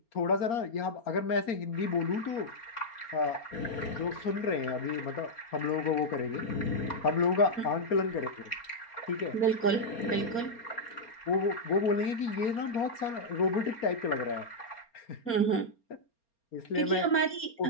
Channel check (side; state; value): right; late; 4.3 ms